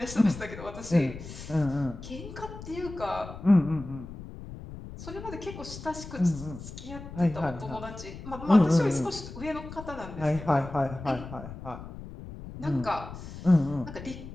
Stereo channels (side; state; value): left; noise; rumble, 12 dB below the sound